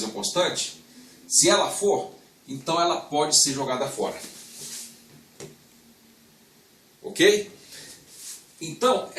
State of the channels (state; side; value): identical; both; correlation 1.00